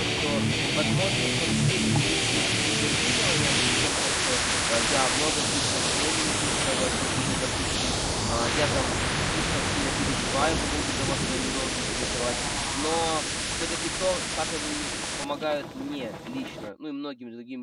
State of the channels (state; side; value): identical; both; correlation 1.00